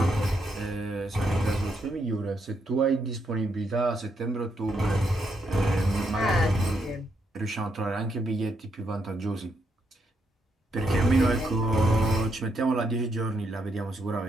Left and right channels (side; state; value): both; normal; correlation 0.78